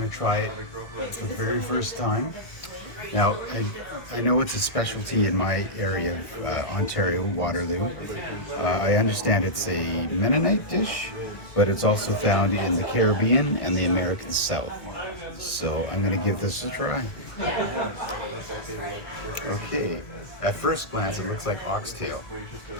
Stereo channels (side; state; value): right; late; 1.6 ms